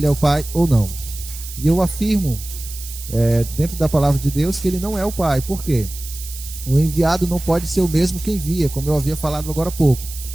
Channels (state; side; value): noise; right; hiss, 12 dB below the sound